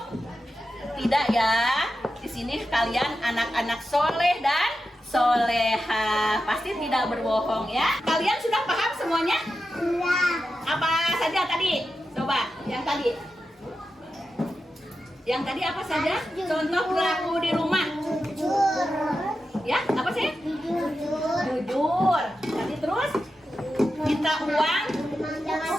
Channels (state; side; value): normal; both; correlation 0.90